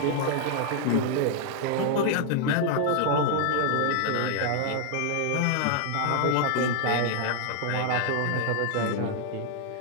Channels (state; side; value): different; both; correlation 0.00